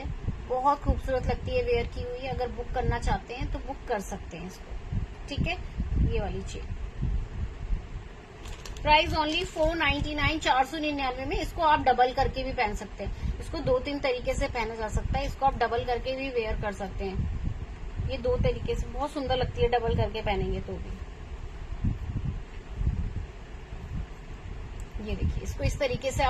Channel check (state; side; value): identical; both; correlation 1.00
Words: बहुत खूबसूरत लगती है वेयर की हुई। अगर बुक करना चाहते हैं तो बुक कर सकते हैं इसको, ठीक है। ये वाली चेन प्राइस ओनली 499, 499 में। इसको आप डबल करके भी पहन सकते हैं, इसको 2-3 तरीके से पहना जा सकता है। इसको आप डबल करके भी वेयर कर सकते हैं, ये 2 तरीके से बहुत सुंदर लगती है डबल करके पहनेंगे तो भी। ये देखिए, इसको इस तरीके से